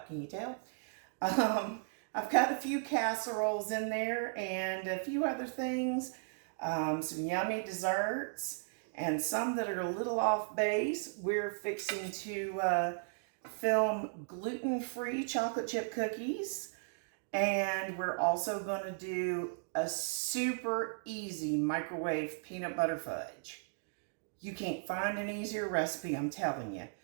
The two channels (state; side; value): silent; left; digital silence